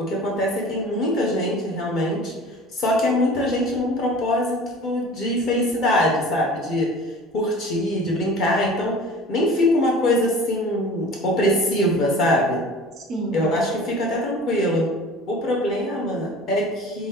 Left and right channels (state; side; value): normal; both; correlation 0.42